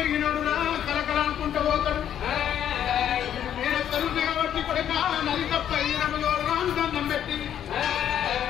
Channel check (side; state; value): right; quieter; 10.0 dB